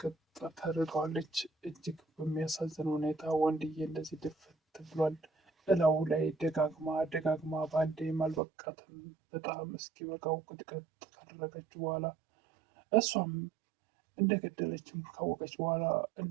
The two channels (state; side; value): drops out; left; at 8.4 s